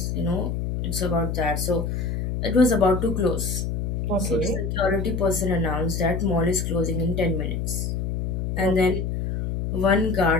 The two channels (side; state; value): left; noise; hum, 2 dB below the sound